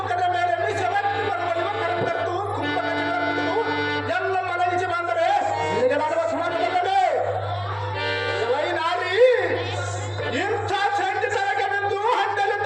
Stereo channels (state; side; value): identical; both; correlation 1.00